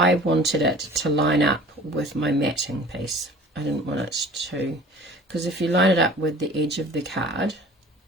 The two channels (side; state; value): both; normal; correlation 0.45